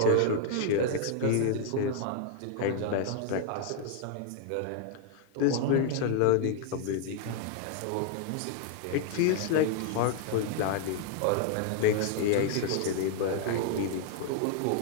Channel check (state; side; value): different; both; correlation 0.00